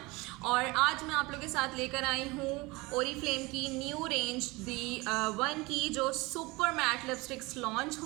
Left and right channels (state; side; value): quieter; left; 23.4 dB